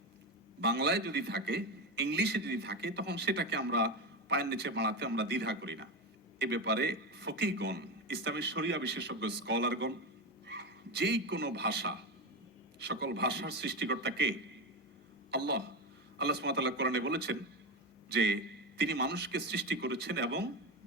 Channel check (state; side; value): normal; both; correlation 0.17